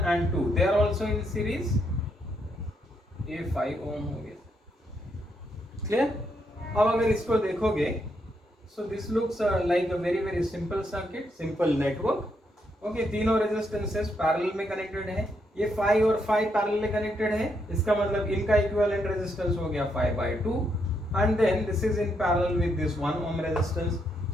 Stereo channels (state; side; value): normal; both; correlation 0.77